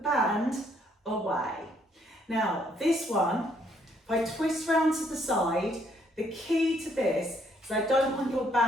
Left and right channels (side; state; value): both; normal; correlation 0.69